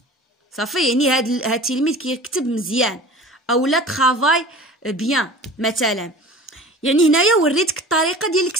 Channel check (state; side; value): normal; both; correlation 0.40